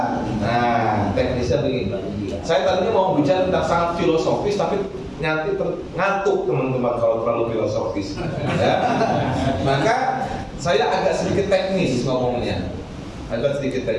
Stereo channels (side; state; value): both; identical; correlation 1.00